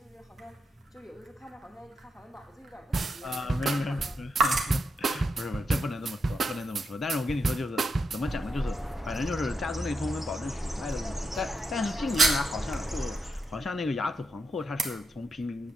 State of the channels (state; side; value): normal; both; correlation 0.84